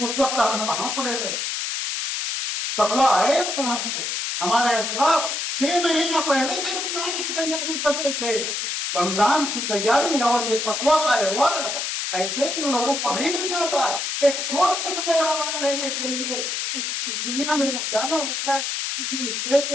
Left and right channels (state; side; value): noise; left; hiss, 2 dB below the sound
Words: وقت ہم کہاں پڑے گئے؟ تقویٰ ہے کہاں سے؟ ہمارے اسلاف 6 مہینہ پہلے سے رمضان کی تیاری کرتے تھے، رمضان کی تیاری اور یہ تقویٰ کا ایوارڈ ایسے ہی لوگوں کو نہیں مل جاتا۔ ایک چھوٹا سا ایوارڈ لینے کے لیے اس دنیا میں جانا ہوتا ہے، کسی اسٹیج